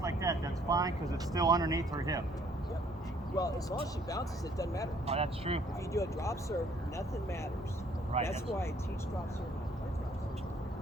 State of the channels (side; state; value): both; normal; correlation 0.62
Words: like that. That's fine because it's still underneath her hip. Yep. Well, as long as she bounces, it doesn't matter. Oh, that's true. If you do a drop serve, nothing matters. Right. That's why I teach drop serve and I play drop serve.